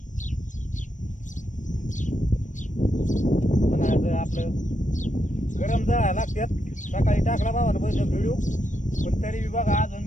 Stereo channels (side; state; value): right; late; 0.37 ms